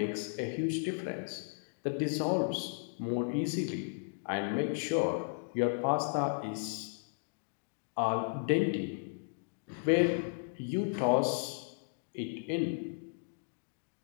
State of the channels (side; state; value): right; silent; digital silence